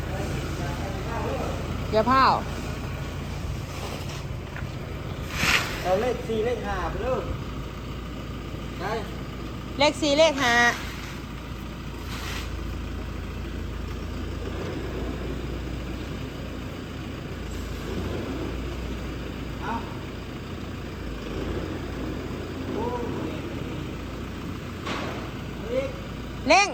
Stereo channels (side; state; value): both; identical; correlation 1.00